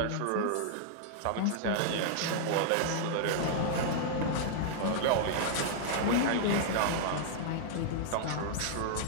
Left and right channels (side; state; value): both; different; correlation -0.01